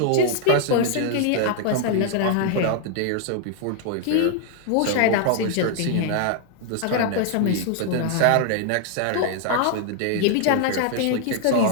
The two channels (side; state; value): both; different; correlation 0.00